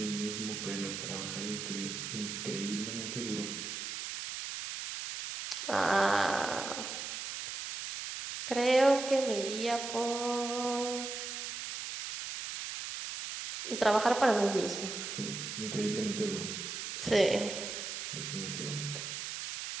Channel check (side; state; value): right; noise; hiss, 6 dB below the sound